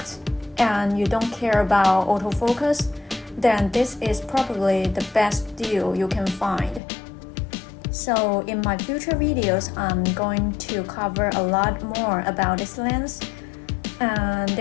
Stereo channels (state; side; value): drops out; right; at 6.8 s